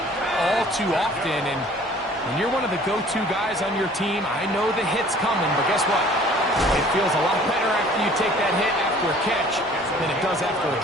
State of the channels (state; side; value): normal; both; correlation 0.52